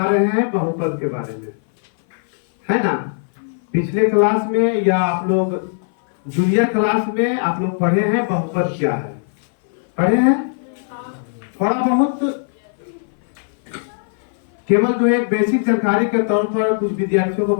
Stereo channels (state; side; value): silent; right; 58 dB below the other